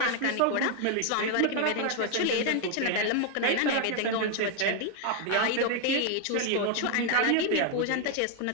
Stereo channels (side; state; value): both; different; correlation 0.00